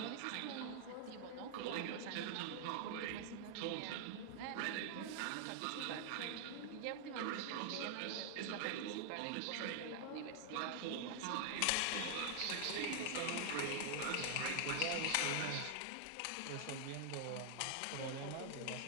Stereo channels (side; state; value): both; different; correlation 0.00